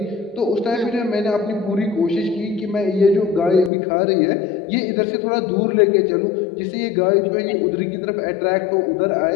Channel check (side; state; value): right; drops out; at 3.7 s